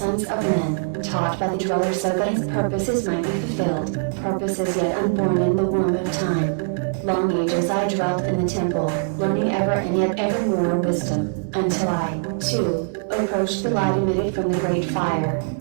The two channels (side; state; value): left; silent; 64 dB below the other